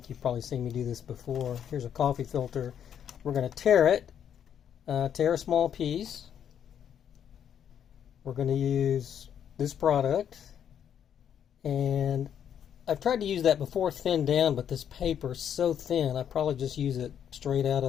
you've probably seen me do this before. Here's a coffee filter. We're going to tear it. Tear a small piece. We're going to use this product, and I've tried to use that before thinned down, but this paper is so thin I probably just use it straight out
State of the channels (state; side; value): quieter; right; 9.0 dB